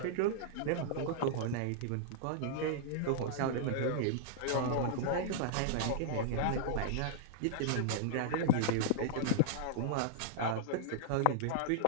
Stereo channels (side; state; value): both; different; correlation -0.01